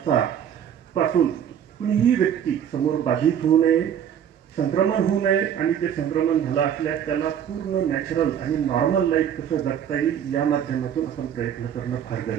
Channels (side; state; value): left; quieter; 9.1 dB